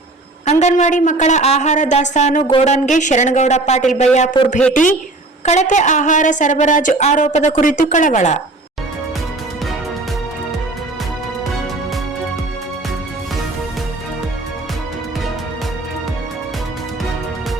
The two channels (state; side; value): quieter; left; 3.0 dB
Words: ಅಂಗನವಾಡಿ ಮಕ್ಕಳ ಆಹಾರ ದಾಸ್ತಾನು ಗೋಡನ್ಗೆ ಶರಣಗೌಡ ಪಾಟೀಲ್ ಬಯ್ಯಾಪುರ್ ಭೇಟಿ. ಕಳಪೆ ಆಹಾರ ಸರಬರಾಜು ಆರೋಪದ ಕುರಿತು ಕಳವಳ.